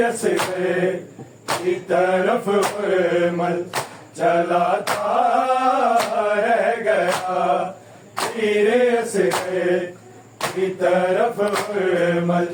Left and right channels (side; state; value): both; identical; correlation 1.00